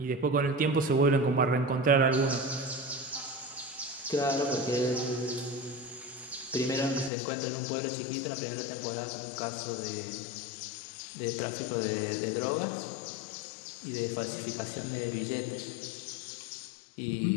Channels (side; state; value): right; drops out; at 7.1 s